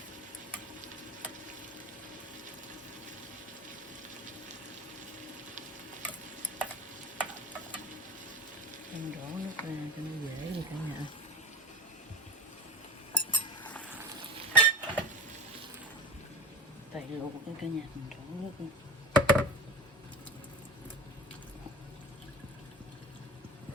Em đổ nước ra cho nó dễ đi cả nhà. Tại luộc cái cả nhà mình đổ nước đi.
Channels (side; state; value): both; normal; correlation 0.32